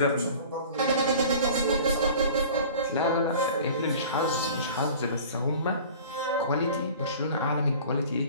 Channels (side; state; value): both; inverted; correlation -0.43